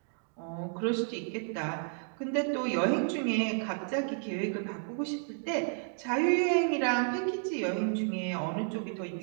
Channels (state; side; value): silent; left; 57 dB below the other